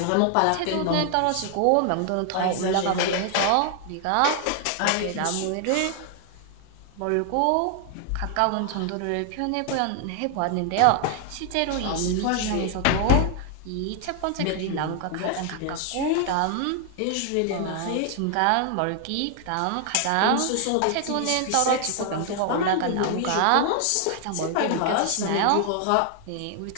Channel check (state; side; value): different; both; correlation 0.00